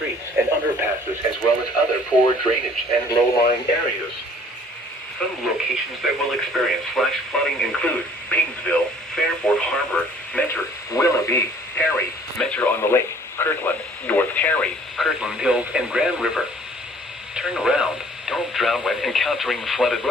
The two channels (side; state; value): both; normal; correlation 0.55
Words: and underpasses, as well as other poor drainage and low-lying areas. Some locations that will experience flash flooding include Painesville, Fairport Harbor, Mentor, Willoughby, Perry, Mentor on the Lake, Kirtland, North Perry, Kirtland Hills, and Grand River. Turn around. Don't drown when encountering flooded